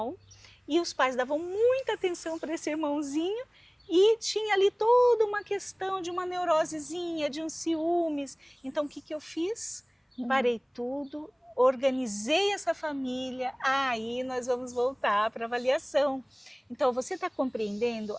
e os pais davam muita atenção para esse irmãozinho e tinha ali toda uma questão de uma neurosezinha, de uns ciúmes. Então o que eu fiz? Parei tudo, organizei essa família, aí nós vamos voltar para a avaliação. Então você está compreendendo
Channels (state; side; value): identical; both; correlation 1.00